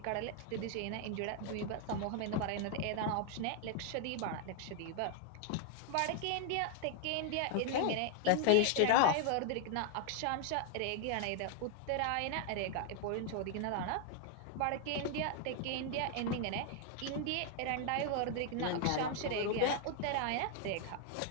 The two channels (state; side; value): different; both; correlation 0.00